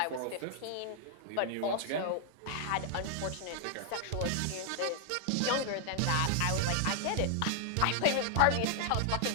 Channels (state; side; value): different; both; correlation 0.00